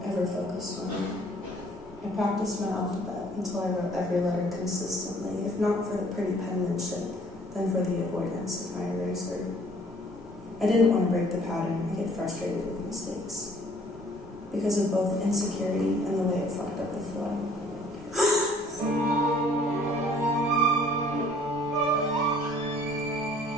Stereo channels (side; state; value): both; normal; correlation 0.57